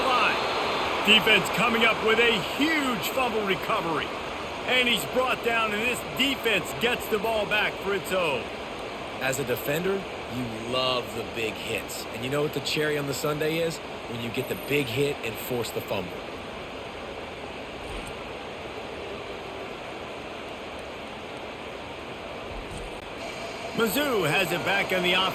line. Defense coming up with a huge fumble recovery. And he's brought down, and this defense gets the ball back for its own. As a defender, you love the big hits. And you know what the cherry on the sundae is? When you get the big hit and force the fumble. Mizzou has it back in the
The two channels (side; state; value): both; identical; correlation 1.00